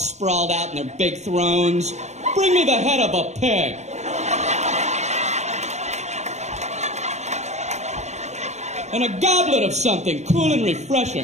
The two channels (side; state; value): left; late; 0.33 ms